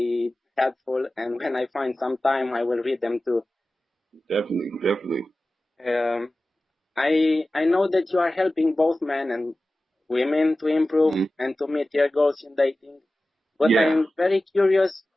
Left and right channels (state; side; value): normal; both; correlation 0.95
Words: helpful, and when I find some time, I will read them too. Definitely. Um, I know that you are helping both men and women to improve and to meet their goals in dating, but Yeah. I'm very curious,